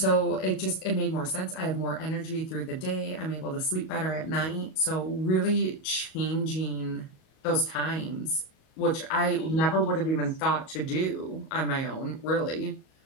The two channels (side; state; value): right; late; 38 ms